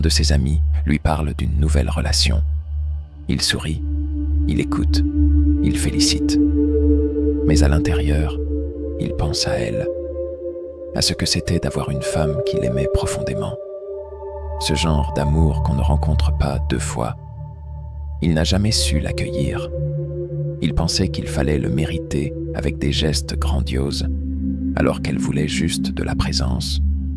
ses amis lui parle d'une nouvelle relation. Il sourit, il écoute, il félicite. Mais à l'intérieur, il pense à elle, à ce que c'était d'avoir une femme qu'il aimait profondément. Ce genre d'amour qu'on ne rencontre pas deux fois. Il n'a jamais su l'accueillir. Il pensait qu'il fallait le mériter avec des gestes grandioses, alors qu'elle voulait juste de la présence,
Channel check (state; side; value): identical; both; correlation 1.00